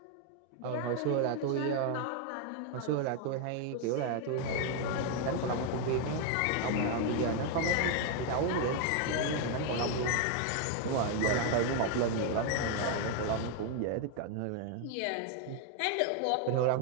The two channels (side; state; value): both; different; correlation 0.01